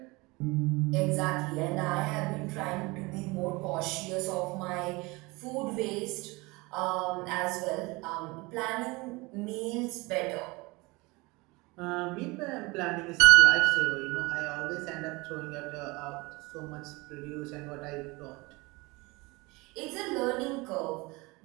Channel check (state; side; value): quieter; left; 24.2 dB